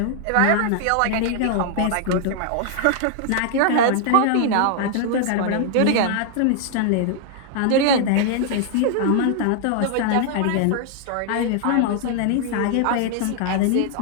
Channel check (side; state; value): both; different; correlation 0.00